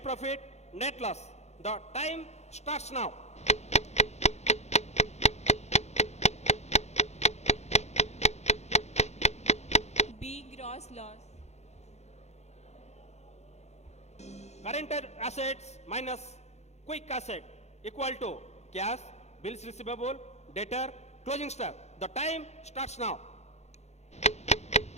profit, net loss. The time starts now. B. Gross loss. Current assets minus quick asset equal to cash, bills receivable, debtor, closing stock. The time starts now.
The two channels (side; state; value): right; late; 0.32 ms